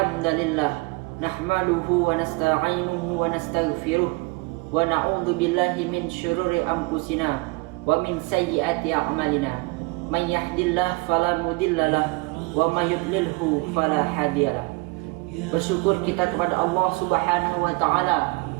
nahmaduhu wa nasta'inuhu wa nastaghfiruh wa na'udzu billahi min syururi anfusina wa min sayyiati a'malina. May yahdihillahu fala mudhillalah wa may yudlilhu fala hadiyalah. Bersyukur kita kepada Allah Subhanahu wa taala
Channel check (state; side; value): quieter; left; 25.7 dB